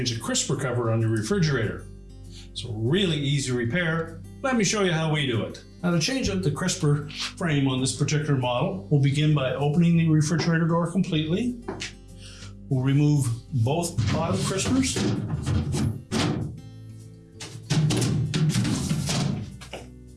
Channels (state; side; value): identical; both; correlation 1.00